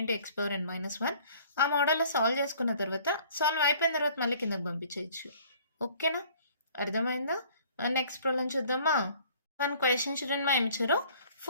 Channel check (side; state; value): both; inverted; correlation -0.54